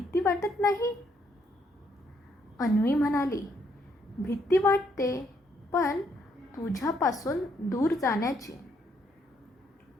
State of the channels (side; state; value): both; normal; correlation 0.72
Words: वाटत नाही? अन्वी म्हणाली. भीती वाटते, पण तुझ्यापासून दूर जाण्याची.